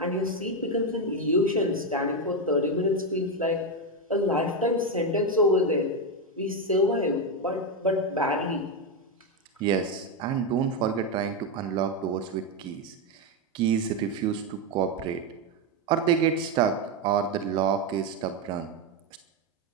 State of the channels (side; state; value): both; normal; correlation 0.08